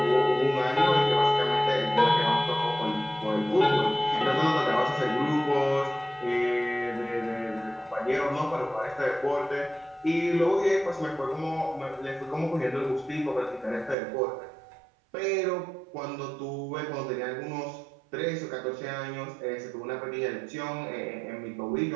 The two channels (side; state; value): left; drops out; at 14.0 s